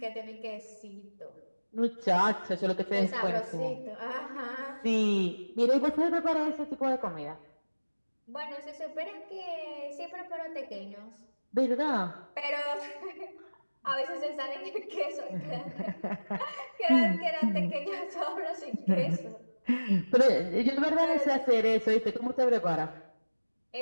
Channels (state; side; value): inverted; both; correlation -1.00